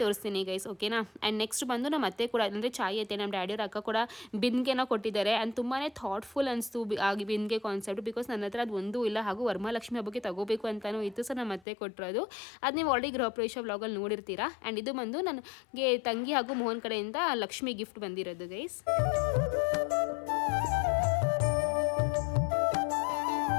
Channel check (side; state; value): right; drops out; at 11.7 s